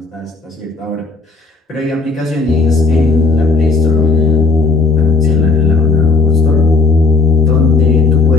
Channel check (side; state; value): right; quieter; 3.6 dB